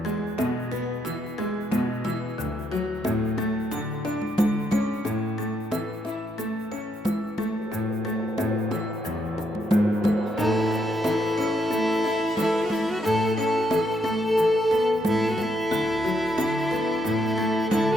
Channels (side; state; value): both; normal; correlation 0.76